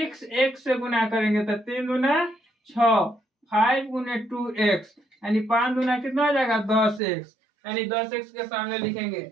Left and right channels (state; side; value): drops out; left; at 7.0 s